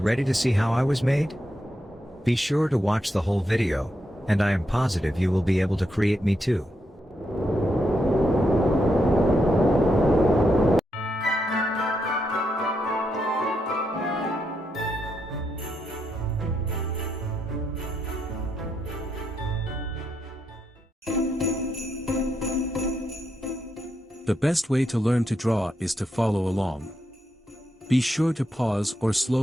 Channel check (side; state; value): both; normal; correlation 0.82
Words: to see how I was made? Be sure to watch the whole video, and I am positive you will be able to create me too. The best way to learn to draw is to follow along. Be sure to pause or